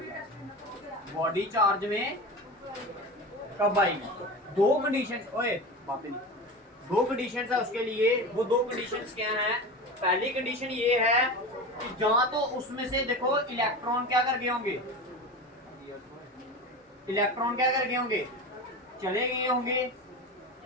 बॉडी चार्ज में कब आएगी। दो कंडीशंस, ओए बातें नहीं, दो कंडीशंस है उसके लिए। वो दो कंडीशंस क्या हैं, पहली कंडीशन ये है कि जहां तो उसमें से देखो इलेक्ट्रॉन क्या कर गए होंगे, इलेक्ट्रॉन क्या कर गए होंगे, चले गए होंगे,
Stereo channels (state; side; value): normal; both; correlation 0.28